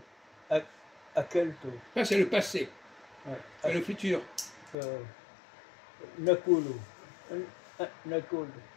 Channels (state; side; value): drops out; right; at 4.8 s